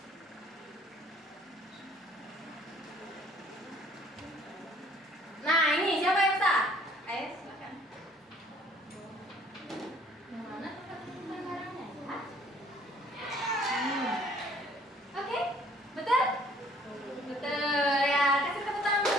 Nah, ini siapa yang bisa? Ayo, silakan. Yang mana tempat menyimpan barangnya ya? Oke, betul? Betul ya, kasih tepuk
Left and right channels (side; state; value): both; normal; correlation 0.58